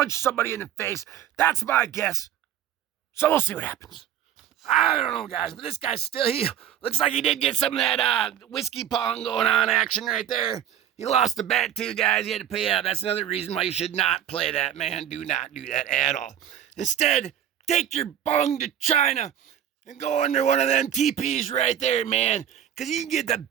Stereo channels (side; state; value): left; quieter; 10.4 dB